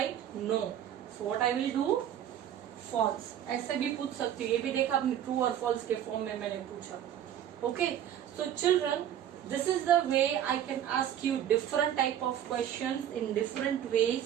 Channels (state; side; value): quieter; left; 10.5 dB